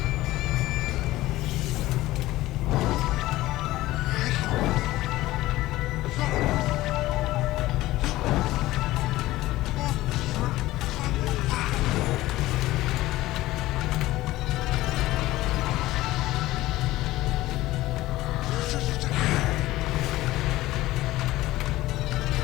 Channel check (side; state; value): right; quieter; 17.1 dB